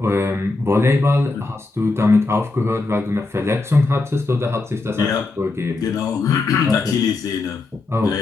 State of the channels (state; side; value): quieter; right; 3.4 dB